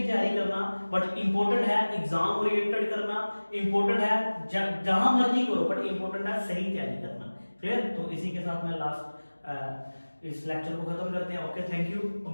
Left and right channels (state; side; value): inverted; both; correlation -1.00